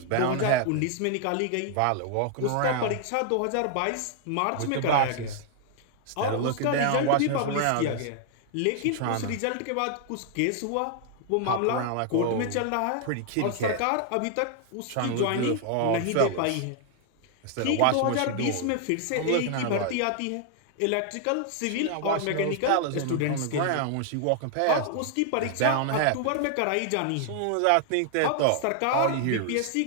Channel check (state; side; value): different; both; correlation 0.00